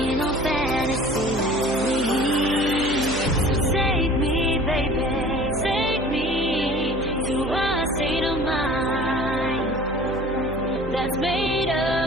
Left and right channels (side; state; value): right; noise; hum, 10 dB below the sound